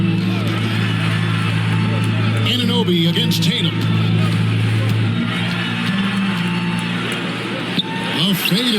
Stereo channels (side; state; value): both; identical; correlation 1.00